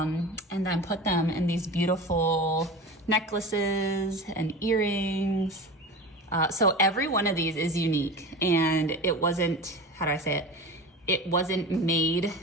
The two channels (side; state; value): both; normal; correlation 0.31